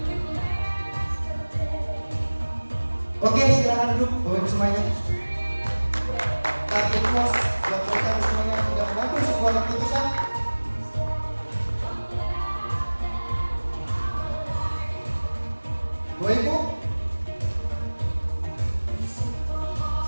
Oke, silakan duduk Bapak Ibu semuanya. Target pos buat mereka semuanya sudah mengambil sebuah keputusan. Bapak Ibu,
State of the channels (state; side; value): inverted; both; correlation -1.00